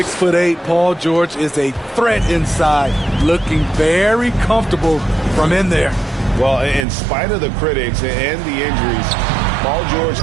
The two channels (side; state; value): left; drops out; at 6.9 s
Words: Paul George is a threat inside, looking very comfortable from in there. Well, in spite of the critics and the injuries, Paul George